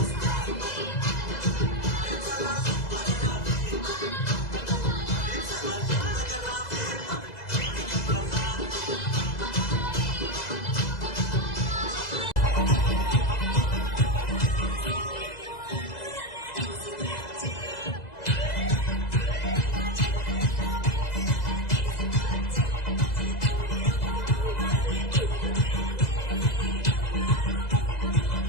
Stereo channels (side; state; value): right; late; 2.0 ms